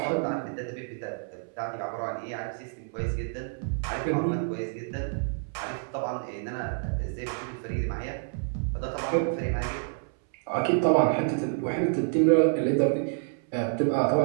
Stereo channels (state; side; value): silent; left; 59 dB below the other